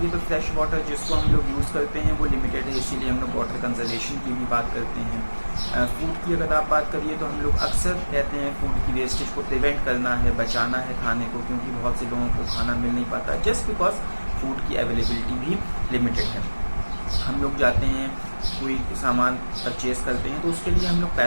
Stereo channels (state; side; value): inverted; both; correlation -1.00